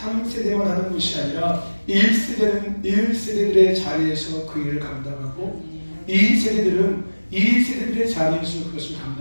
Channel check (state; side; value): inverted; both; correlation -1.00